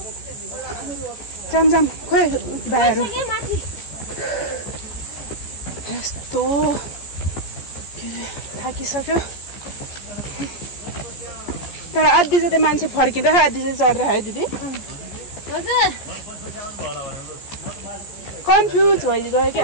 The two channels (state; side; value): late; right; 14 ms